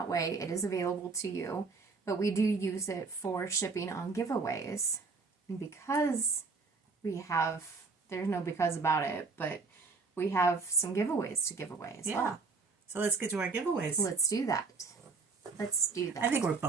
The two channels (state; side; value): quieter; left; 4.3 dB